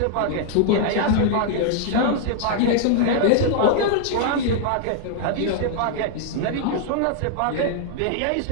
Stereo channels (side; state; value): both; different; correlation 0.00